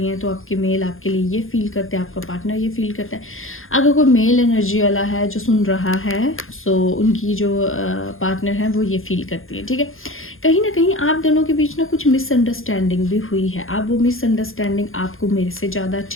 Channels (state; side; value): late; right; 0.60 ms